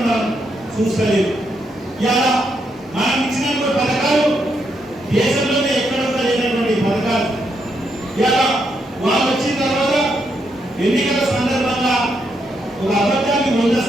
మనం చూస్తలేదు. ఇలా మనం ఇచ్చినటువంటి పథకాలు దేశంలోనే ఎక్కడ కూడా లేనటువంటి పథకాలు ఇలా వాళ్ళు వచ్చిన తర్వాత ఎన్నికల సందర్భంగా ఒక అబద్ధాన్ని 100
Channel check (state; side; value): normal; both; correlation 0.79